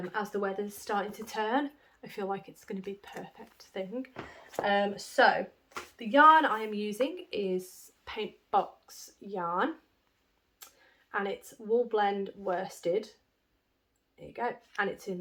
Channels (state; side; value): identical; both; correlation 1.00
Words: the weather's starting to turn. I feel like it's going to be the perfect thing. So the yarn I am using is Paint Box yarn, and it's Wool Blend Worsted. There you go. And it's in